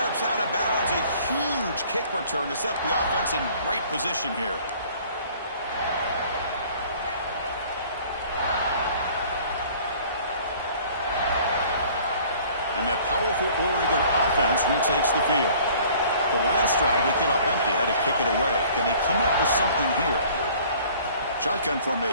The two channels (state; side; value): inverted; both; correlation -0.52